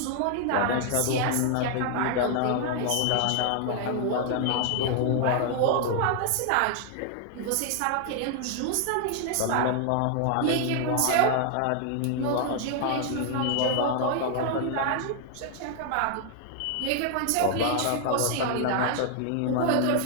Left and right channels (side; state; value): both; different; correlation 0.00